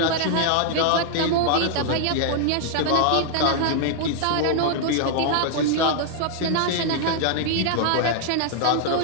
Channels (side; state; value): both; different; correlation 0.00